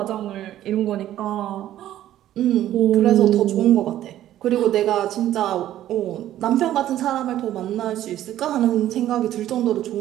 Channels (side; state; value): left; quieter; 12.7 dB